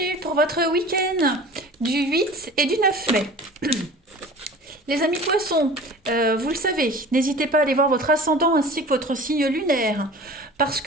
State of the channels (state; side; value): normal; both; correlation 0.41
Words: pour votre week-end du 8 et du 9 mai. Les amis poissons, vous le savez, n'hésitez pas à aller voir votre ascendant ainsi que votre signe lunaire, parce